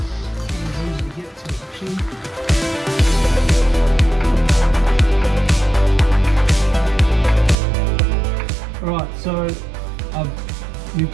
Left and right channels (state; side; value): drops out; left; at 7.6 s